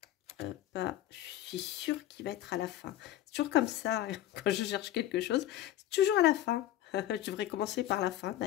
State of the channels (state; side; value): quieter; right; 13.2 dB